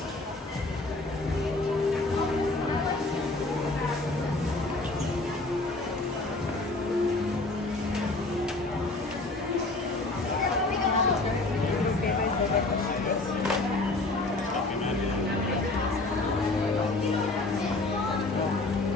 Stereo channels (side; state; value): right; quieter; 3.1 dB